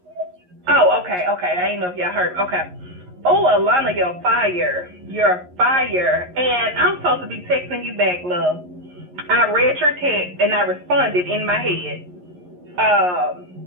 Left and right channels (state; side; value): late; left; 11 ms